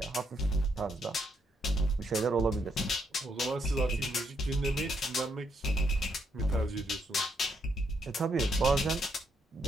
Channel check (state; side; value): normal; both; correlation 0.75